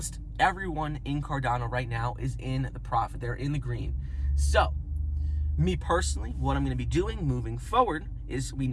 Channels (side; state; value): both; identical; correlation 1.00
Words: everyone in Cardano right now is in the profit. They're in the green. So, me personally, what I'm going to be doing moving forward is we